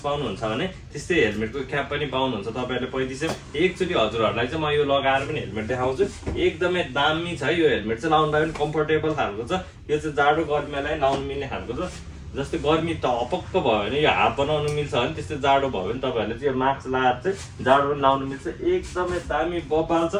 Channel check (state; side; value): identical; both; correlation 1.00